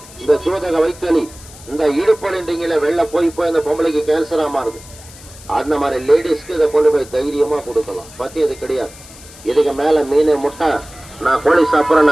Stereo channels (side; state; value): left; noise; hiss, 19 dB below the sound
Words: இந்த சூதக வைத்தலி, இந்த இடுப்பொழின்றீங்கள வெள்ள போய் இந்த பொம்பளைக்கு கேன்சரா மாறுது. அந்த மாதிரி லேடிஸ்க்கு இதை கொண்டு போய் தைரியமா கொடுக்கலாம். பத்தி இது கிடையாது. இதுக்கு மேல மீன், முட்டை, நான் கோழி சாப்பிட்றேன்,